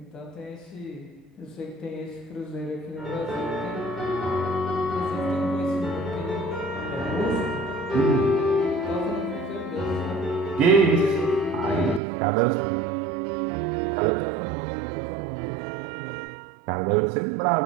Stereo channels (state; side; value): drops out; left; at 12.0 s